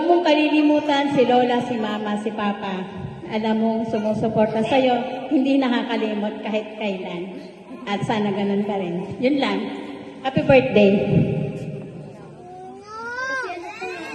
mong kalilimutan si lola, si mama, si papa. Alam mo, sumusuporta sa'yo, hindi nakakalimot kahit kailan. At sana ganun ka rin. Yun lang. Happy birthday.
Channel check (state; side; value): identical; both; correlation 1.00